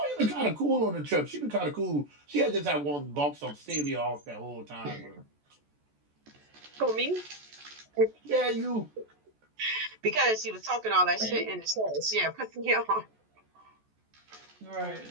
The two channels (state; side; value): late; left; 14 ms